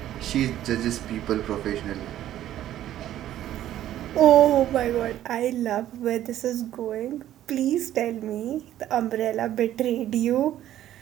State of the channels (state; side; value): quieter; left; 12.4 dB